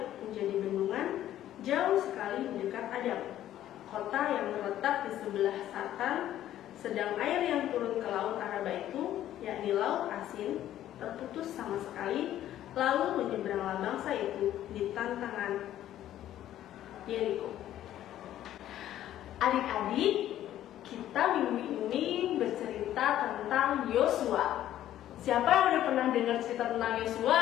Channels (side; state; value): right; quieter; 12.4 dB